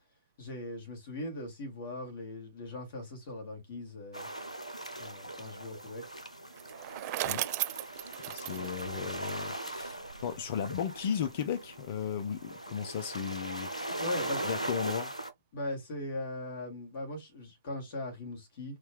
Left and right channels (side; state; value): both; inverted; correlation -0.49